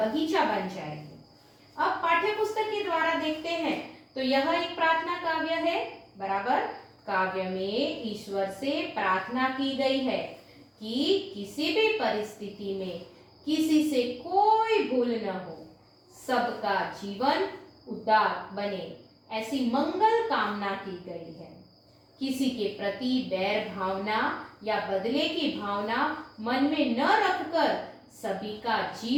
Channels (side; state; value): both; identical; correlation 1.00